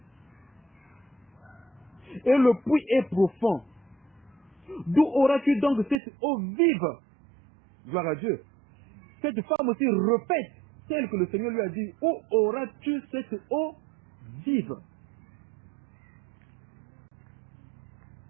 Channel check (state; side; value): drops out; left; at 6.0 s